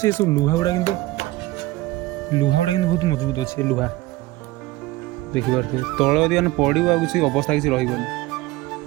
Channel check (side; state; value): left; quieter; 18.3 dB